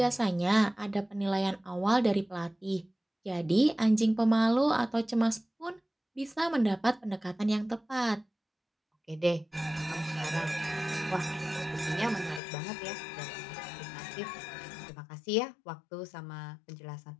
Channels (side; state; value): right; drops out; at 12.4 s